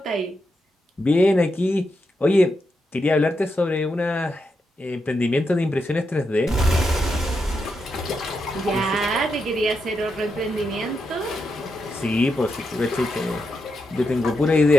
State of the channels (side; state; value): both; normal; correlation 0.85